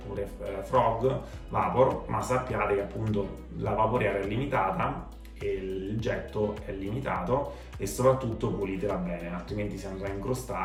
Frog Vapor, ma sappiate che appunto la vaporiera è limitata e il getto è limitato, e soprattutto pulitela bene, altrimenti si andrà a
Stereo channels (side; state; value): both; identical; correlation 1.00